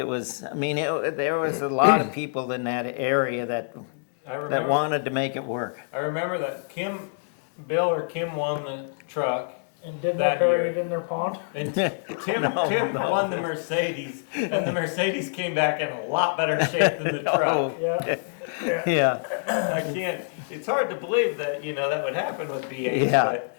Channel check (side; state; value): right; silent; digital silence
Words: was, there was a lot of people in that area that wanted to make it work. I remember that Bill or Kim won the truck, And did that they bury year. it in their pond? And Tim won the Mercedes, and the Mercedes came back in a lot better shape than the truck. Oh, Yeah. Yeah, I can't. It's hard to believe that that would happen with B8. Yeah. But